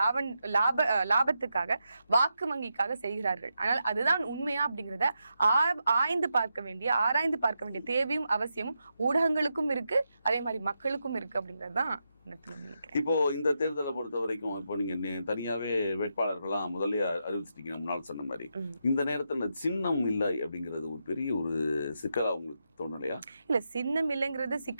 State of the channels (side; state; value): both; inverted; correlation -0.85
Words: லாபத்துக்காக, வாக்கு வங்கிக்காக செய்கிறார்கள். ஆனால் அதுதான் உண்மையா அப்படிங்கிறத ஆராய்ந்து பார்க்க வேண்டிய தேவையும் அவசியமும் ஊடகங்களுக்கும் இருக்கு, அதே மாதிரி மக்களுக்கும் இருக்கு அப்படிங்கிறது தான். இப்போ இந்த தேர்தலை பொறுத்த வரைக்கும் இப்போ நீங்க தனியாவே வேட்பாளர்கள்லாம் முதல்ல அறிவிச்சிட்டீங்க முன்னாள் சொன்ன மாதிரி. இந்த நேரத்துல சின்னம் இல்லை அப்படிங்கிறது ஒரு பெரிய ஒரு சிக்கலா உங்களுக்கு தோணலையா? இல்ல, சின்னம் இல்லைங்கிறது